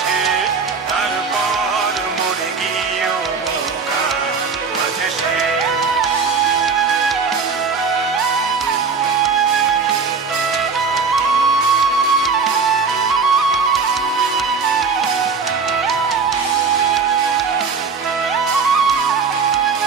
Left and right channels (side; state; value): left; quieter; 5.2 dB